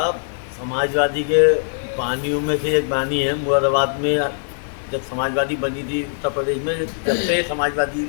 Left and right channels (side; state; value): right; silent; digital silence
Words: समाजवादी के बानियों में से एक बानी है। मुरादाबाद में जब समाजवादी बनी थी उत्तर प्रदेश में, जब से समाजवादी